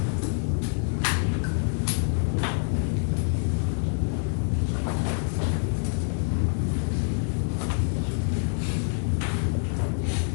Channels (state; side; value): silent; right; 60 dB below the other